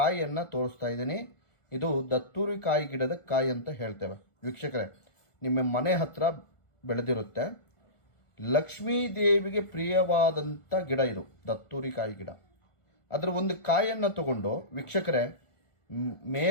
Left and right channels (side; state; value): right; late; 1.4 ms